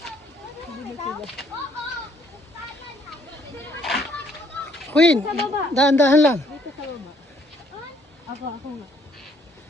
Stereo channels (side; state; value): both; normal; correlation 0.66